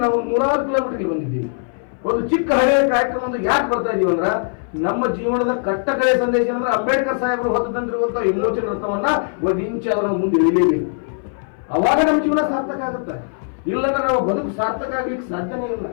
ನಾವು 100 ಕಿಲೋಮೀಟರ್ಗೆ ಬಂದಿದ್ದೀವಿ. ಒಂದು ಚಿಕ್ಕ ಹಳೆಯ ಕಾರ್ಯಕ್ರಮ ಒಂದು ಯಾಕೆ ಬರ್ತಾ ಇದೀವಿ ಅಂದ್ರ, ನಮ್ಮ ಜೀವನದ ಕಟ್ಟಕಡೆಯ ಸಂದೇಶ ಅಂದ್ರೆ ಅಂಬೇಡ್ಕರ್ ಸಾಹೇಬರು ಹೊತ್ತು ತಂದಿರುವಂತ ವಿಮೋಚನ ರಥವನ್ನ ಒಂದು ಇಂಚ ಅವರ ಮುಂದೆ ಇಳಿಯಲೇಬೇಕು. ಅವಾಗ ನಮ್ಮ ಜೀವನ ಸಾರ್ಥಕ ಆಗುತ್ತೆ. ಇಲ್ಲಂದ್ರೆ ನಾವು ಬದುಕು ಸಾರ್ಥಕ ಆಗ್ಲಿಕ್ಕೆ ಸಾಧ್ಯನೇ ಇಲ್ಲ.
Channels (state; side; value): silent; right; 61 dB below the other